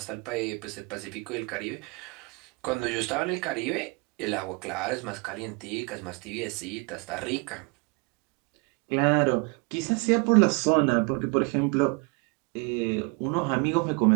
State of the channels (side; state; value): left; quieter; 30.2 dB